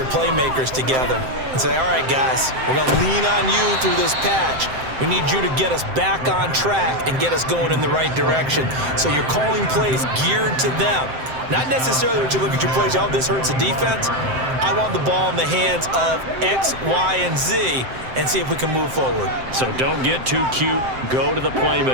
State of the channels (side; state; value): left; late; 7.7 ms